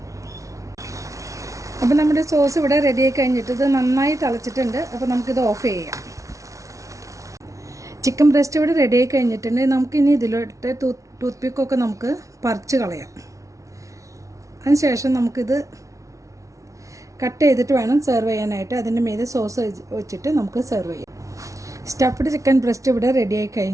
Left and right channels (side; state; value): left; late; 0.15 ms